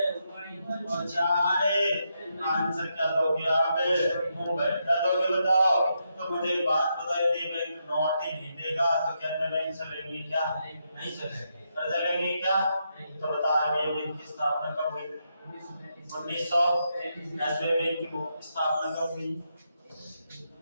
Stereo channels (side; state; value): both; inverted; correlation -0.81